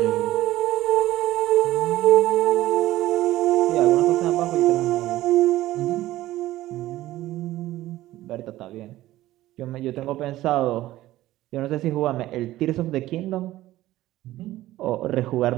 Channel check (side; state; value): left; quieter; 15.5 dB